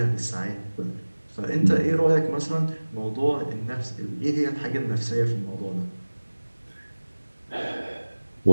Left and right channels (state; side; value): inverted; both; correlation -1.00